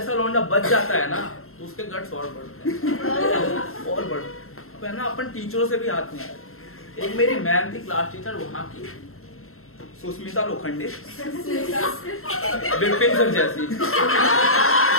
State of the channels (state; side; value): late; right; 0.62 ms